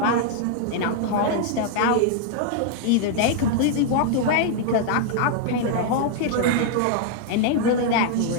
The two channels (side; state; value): both; different; correlation 0.00